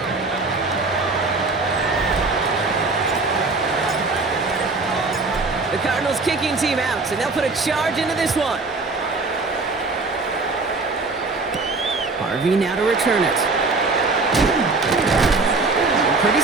The Cardinals kicking team out, and they'll put a charge into this one. Harvey now to return it. Pretty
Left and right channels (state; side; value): quieter; left; 3.7 dB